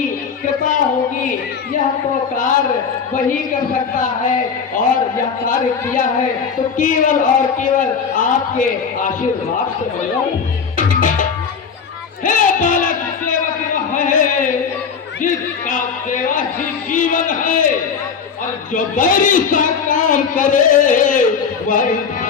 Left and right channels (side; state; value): right; quieter; 6.2 dB